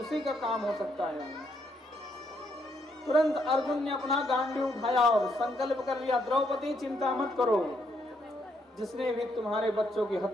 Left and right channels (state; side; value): normal; both; correlation 0.74